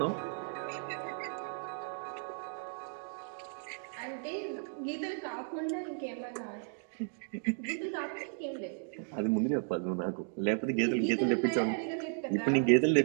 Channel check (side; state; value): left; silent; 55 dB below the other